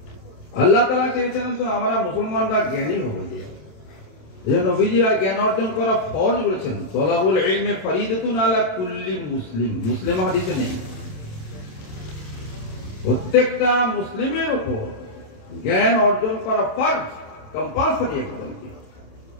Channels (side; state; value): right; late; 27 ms